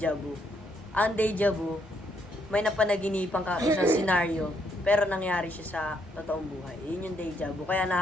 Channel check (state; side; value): normal; both; correlation 0.73